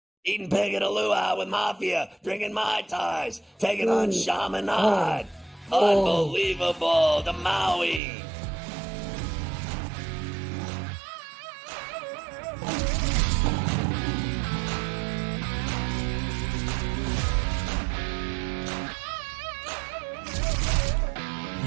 Eating pig at a luau with Mafia, drinking Mai Tais, taking on Chaminade. Unbelievable. The Maui.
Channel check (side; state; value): left; drops out; at 8.0 s